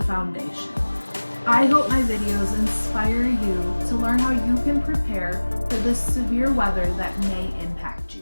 foundation. I hope my videos inspire you to learn how you can prepare for the severe weather that may impact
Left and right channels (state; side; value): inverted; both; correlation -1.00